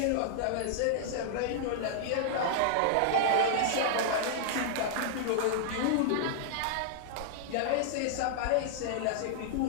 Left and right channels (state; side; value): different; both; correlation -0.01